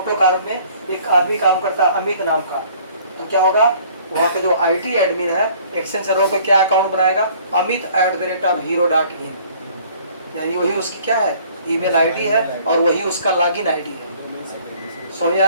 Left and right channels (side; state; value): both; inverted; correlation -0.55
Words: कार में एक आदमी काम करता है अमित नाम का, तो क्या होगा? वहाँ पे जो IT एडमिन है एक्सचेंज सर्वर पे क्या अकाउंट बनाएगा? amit@hero.in, यानी वही उसकी क्या है? ईमेल आईडी है, और वही उसका लॉगिन आईडी है। समझ आ